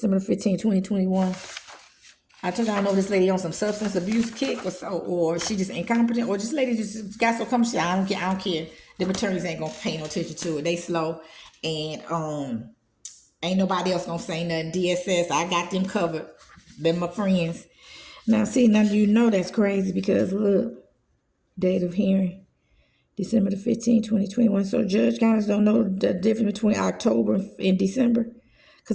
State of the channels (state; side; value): identical; both; correlation 1.00